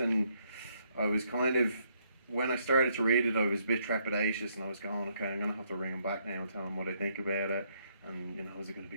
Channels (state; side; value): inverted; both; correlation -0.72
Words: I was kind of, when I started to read it, I was a bit trepidatious, and I was going, okay, I'm gonna have to ring him back now and tell him what I think about it, and you know, is it gonna